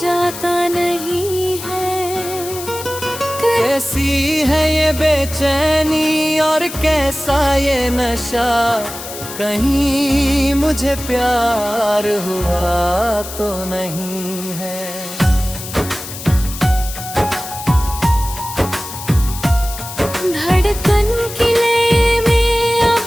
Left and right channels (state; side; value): noise; left; hiss, 11 dB below the sound